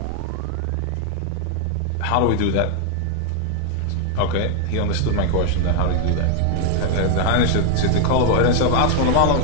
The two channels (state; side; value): different; both; correlation 0.00